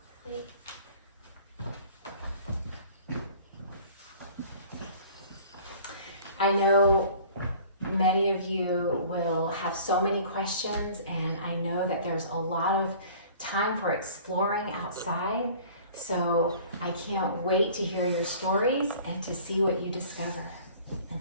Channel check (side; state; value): both; inverted; correlation -0.48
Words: I know many of you will have so many questions, and I know that there's a lot of time for exploring outside. So I can't wait to hear your stories and to see what you discover.